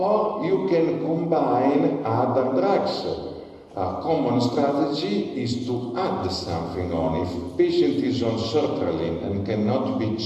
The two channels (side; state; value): both; identical; correlation 1.00